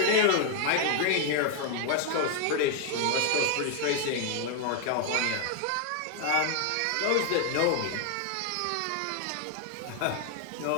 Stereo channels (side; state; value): both; different; correlation 0.00